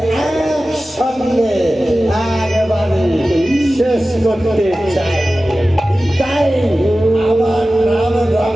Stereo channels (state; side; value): normal; both; correlation 0.95